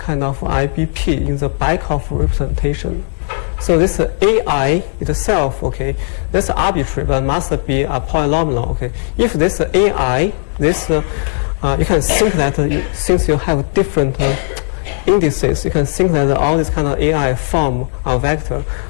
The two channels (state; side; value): silent; right; digital silence